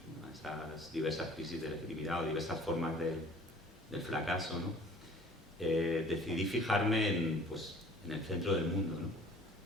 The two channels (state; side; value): normal; both; correlation 0.50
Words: a esas diversas crisis de legitimidad o diversas formas del fracaso, ¿no? Decidí fijarme en el centro del mundo, ¿no?